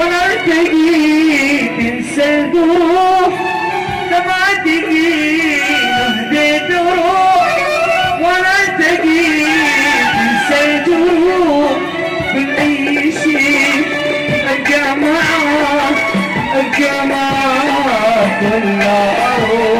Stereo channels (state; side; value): identical; both; correlation 1.00